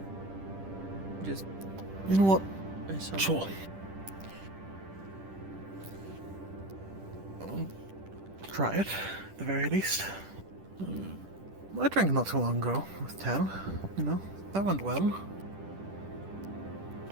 Just... You know what? Sure. I'll try it, at the very least. I drank not too long ago with Tal. That went well.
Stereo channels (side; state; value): left; late; 10 ms